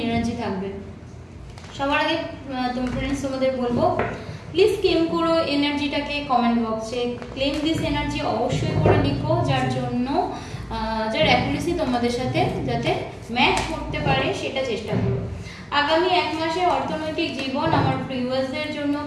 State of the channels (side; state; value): both; identical; correlation 1.00